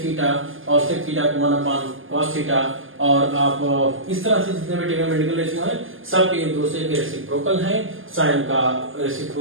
थीटा, और sec थीटा को 1 अपॉन cos थीटा, और आप इस तरह से जितने भी ट्रिग्नोमेट्रिकल रेशियो है सब एक दूसरे के रेसिप्रोकल हैं। साइन का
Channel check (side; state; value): left; late; 0.59 ms